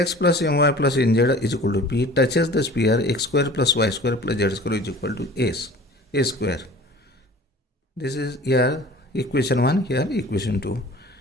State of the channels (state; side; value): normal; both; correlation 0.44